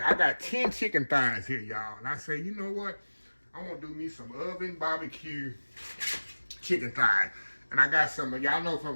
I got 10 chicken thighs here, y'all. And I say, you know what? I'm gonna do me some oven barbecue chicken thighs. And I got some, y'all know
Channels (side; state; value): both; inverted; correlation -1.00